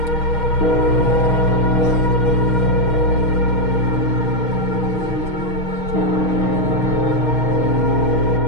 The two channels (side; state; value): right; late; 6.3 ms